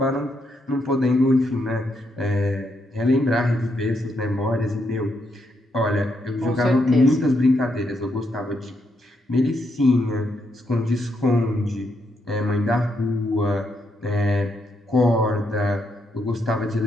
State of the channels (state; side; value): normal; both; correlation 0.79